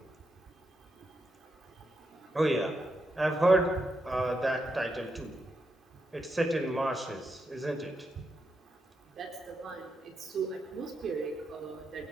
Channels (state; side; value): normal; both; correlation 0.84